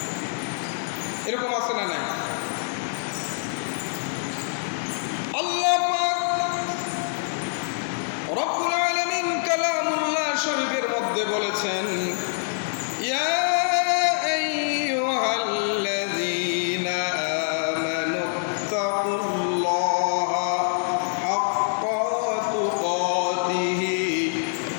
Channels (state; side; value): silent; right; digital silence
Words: এরকম আছে না নাই? আল্লাহ পাক রব্বুল আলামিন কালামুল্লাহ শরীফের মধ্যে বলেছেন, ইয়া আইয়ুহাল্লাযীনা আমানু তাকুল্লাহা হাক্কা তুকাতিহি